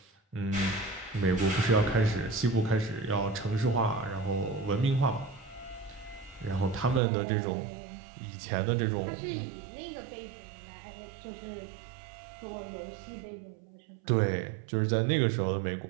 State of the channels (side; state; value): left; drops out; at 7.0 s